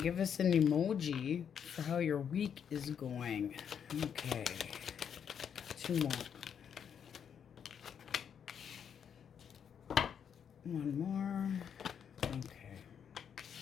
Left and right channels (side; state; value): right; quieter; 7.9 dB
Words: give us an emoji for how your week is going. Okay. 2 more. 1 more. Okay.